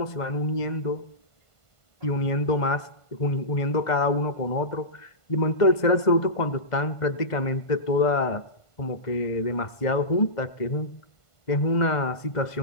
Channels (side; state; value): right; late; 1.5 ms